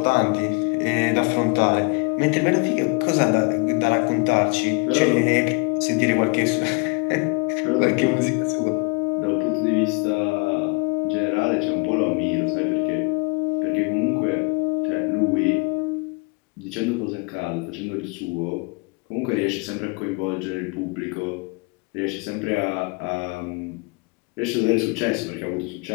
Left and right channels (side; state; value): right; quieter; 29.9 dB